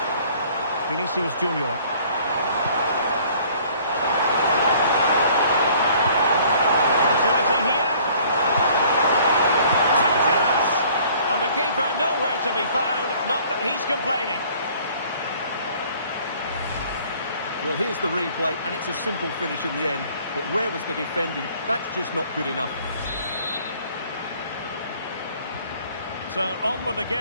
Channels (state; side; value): inverted; both; correlation -0.55